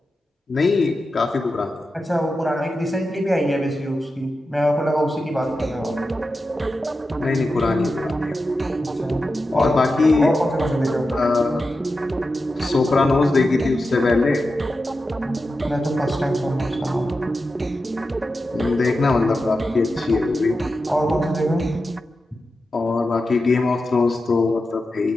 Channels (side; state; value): both; normal; correlation 0.91